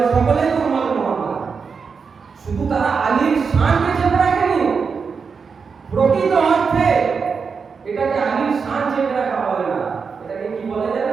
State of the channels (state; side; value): quieter; left; 5.5 dB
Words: সকলেই তো উম্মত মুহাম্মদ, শুধু তারা আলীর শানকে চেপে রাখেনি, প্রকৃত অর্থে এটাকে আলীর শান চেপে রাখা বলে না, এটাকে কি বলে